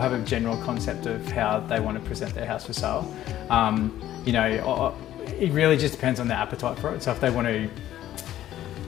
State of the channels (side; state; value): right; quieter; 12.8 dB